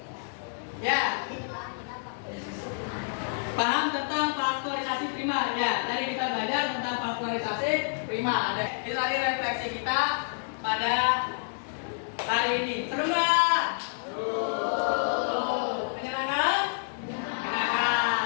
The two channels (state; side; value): silent; right; digital silence